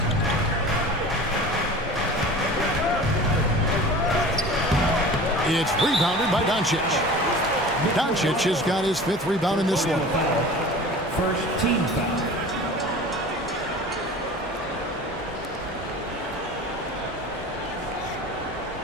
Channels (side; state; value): both; normal; correlation 0.39